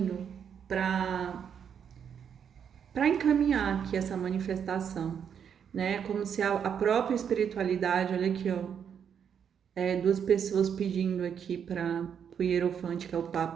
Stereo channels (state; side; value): quieter; left; 7.9 dB